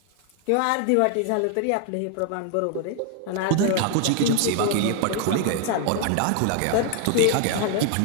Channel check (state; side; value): different; both; correlation 0.00